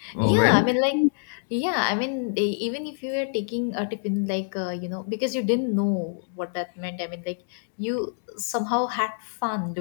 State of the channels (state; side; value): silent; right; digital silence